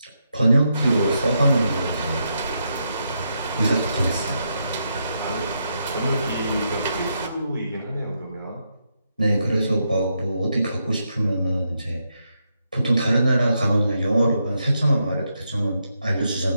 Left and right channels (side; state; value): both; inverted; correlation -0.82